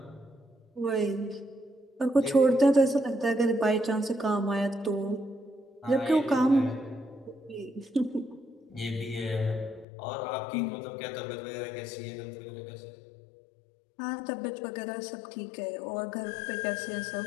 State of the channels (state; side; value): drops out; right; at 9.9 s